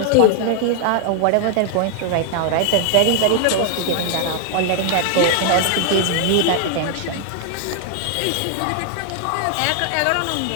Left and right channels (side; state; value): both; different; correlation 0.00